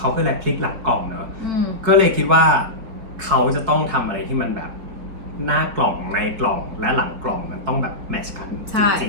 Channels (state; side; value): late; left; 4.7 ms